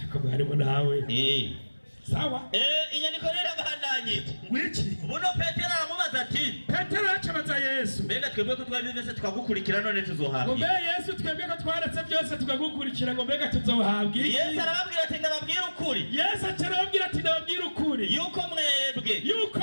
Ako harimo nawe. Sawa? Inyandiko rero abandanye. Wiki. Buno Petero aramubaza ati. Petero acabaza Yesu. Mbega twebwe ko twabivese tukagukurikira none tuzohabwa. Ngo mbega Yesu twebwe ko twaretse byose tukagukurikira ngo mbega tuzohabwa. Yesu arababwira ati ndababwira ukuri. Yesu arababwira ati ndababwira ukuri. Yuko mwebwe.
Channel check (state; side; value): inverted; both; correlation -1.00